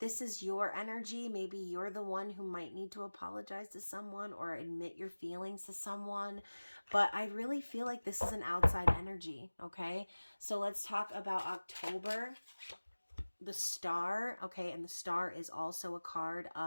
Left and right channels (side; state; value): both; inverted; correlation -1.00